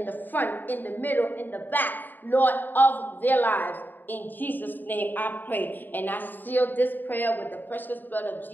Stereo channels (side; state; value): right; late; 0.090 ms